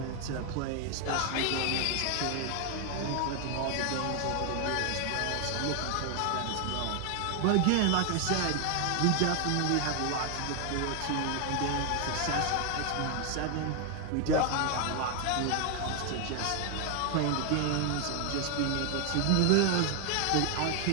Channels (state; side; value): different; both; correlation 0.00